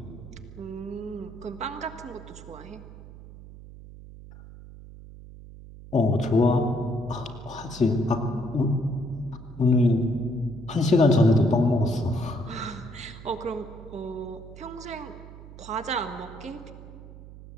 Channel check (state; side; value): noise; right; hum, 16 dB below the sound